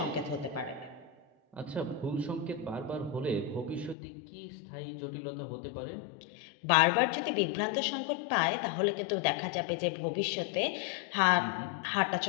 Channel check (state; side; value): drops out; right; at 4.0 s